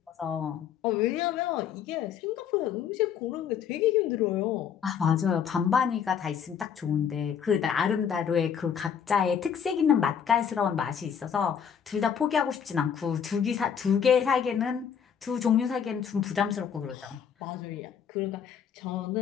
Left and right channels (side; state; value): right; quieter; 7.8 dB